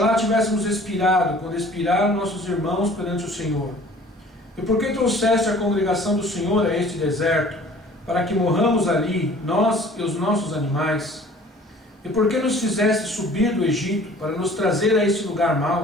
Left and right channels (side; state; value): both; normal; correlation 0.50